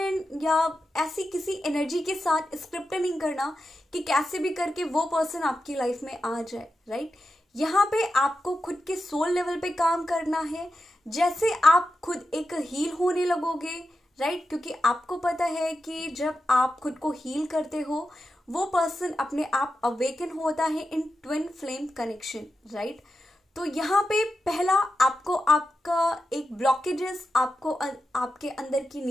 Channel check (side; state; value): both; normal; correlation 0.89